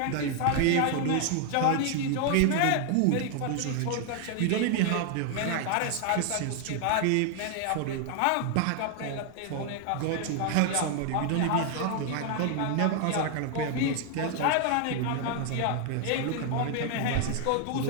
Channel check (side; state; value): both; different; correlation 0.00